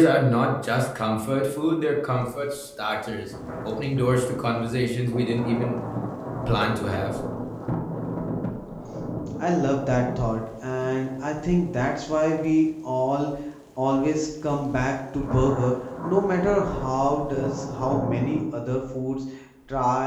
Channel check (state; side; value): identical; both; correlation 1.00